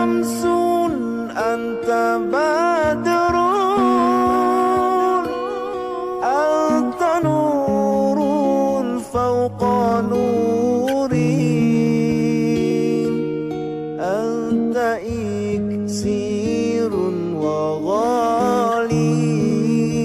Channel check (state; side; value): noise; right; rumble, 27 dB below the sound